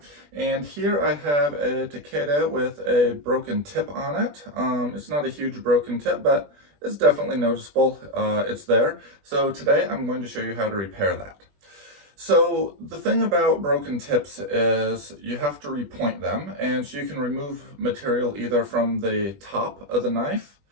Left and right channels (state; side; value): late; left; 20 ms